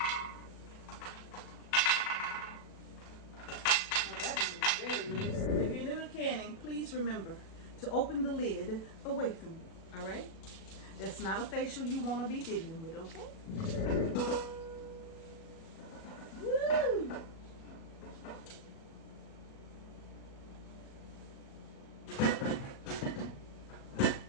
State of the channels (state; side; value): late; right; 37 ms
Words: Oh, that one is very loose. If you're new to canning, please remember to open the lid away from you, all right? That's not a facial you wanna be dealing with, okay? Woo!